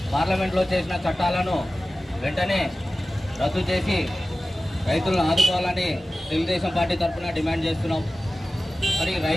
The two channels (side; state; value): both; normal; correlation 0.96